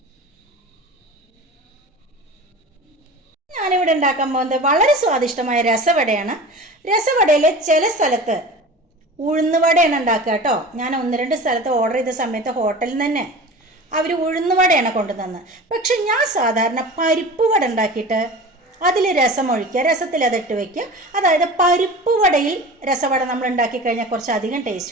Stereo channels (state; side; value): normal; both; correlation 0.35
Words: ഞാനിവിടെ ഉണ്ടാക്കാൻ പോകുന്നത് വളരെ സ്വാദിഷ്ടമായ രസവടയാണ്. രസവടയിൽ ചില സ്ഥലത്ത് ഉഴുന്നുവടയാണ് ഉണ്ടാക്കുക കേട്ടോ. ഞാൻ 1-2 സ്ഥലത്ത് ഓർഡർ ചെയ്ത സമയത്ത് ഹോട്ടലിൽ നിന്ന് തന്നെ അവർ ഉഴുന്നുവടയാണ് കൊണ്ടുതന്നത്. പക്ഷെ ഞാൻ സാധാരണ പരിപ്പ് വട ഉണ്ടാക്കിയിട്ട് അതിൽ രസം ഒഴിക്കുക, രസത്തിൽ അതിട്ട് വയ്ക്കുക. അതായത് പരിപ്പ് വടയിൽ രസവട നമ്മൾ ഉണ്ടാക്കി കഴിഞ്ഞാൽ കുറച്ച് അധികം